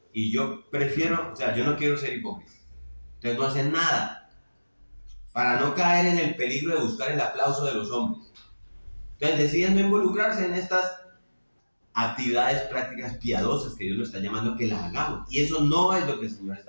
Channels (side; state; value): both; inverted; correlation -1.00